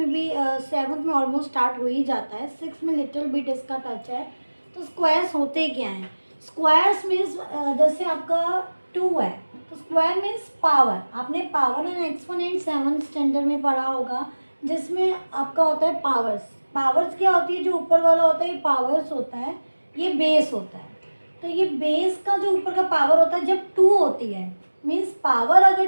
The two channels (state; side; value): inverted; both; correlation -1.00